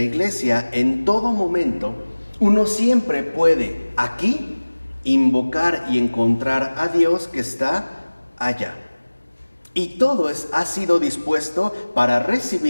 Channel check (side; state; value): both; inverted; correlation -1.00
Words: en todo momento, uno siempre puede aquí invocar y encontrar a Dios que está allá. Y todo ha sido dispuesto para